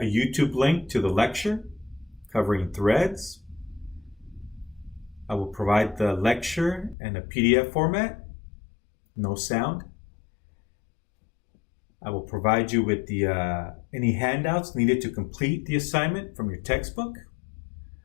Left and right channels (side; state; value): right; drops out; at 7.0 s